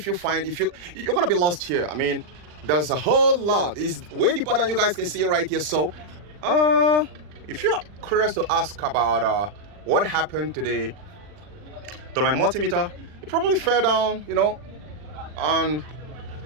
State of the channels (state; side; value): late; left; 40 ms